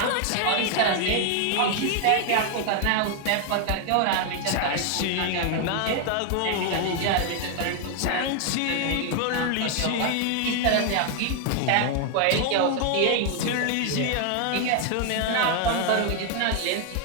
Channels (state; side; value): different; both; correlation 0.00